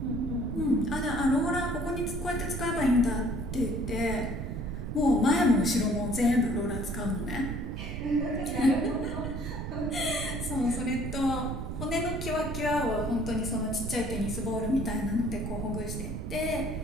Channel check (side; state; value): right; noise; rumble, 4 dB below the sound